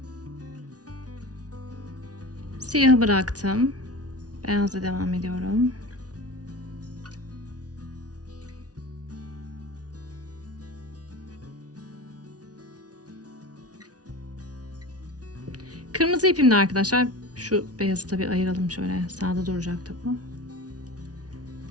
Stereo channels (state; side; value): late; left; 0.68 ms